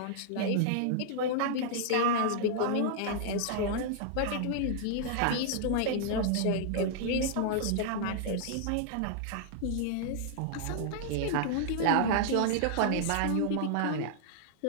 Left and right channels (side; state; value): both; different; correlation -0.01